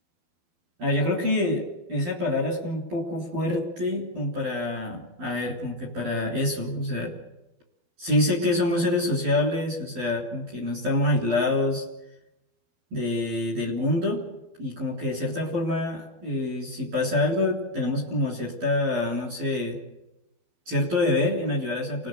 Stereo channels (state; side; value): late; left; 12 ms